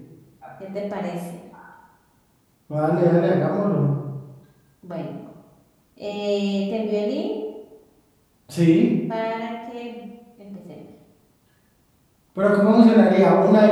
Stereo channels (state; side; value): identical; both; correlation 1.00